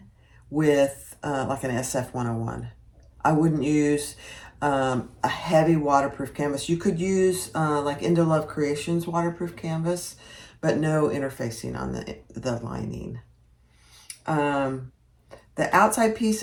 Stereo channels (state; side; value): identical; both; correlation 1.00